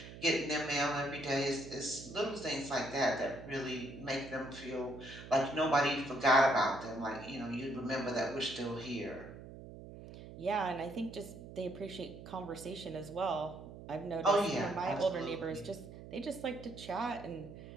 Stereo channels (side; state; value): right; noise; hum, 14 dB below the sound